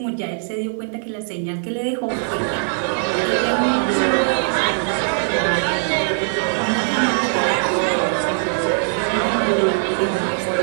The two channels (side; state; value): left; silent; digital silence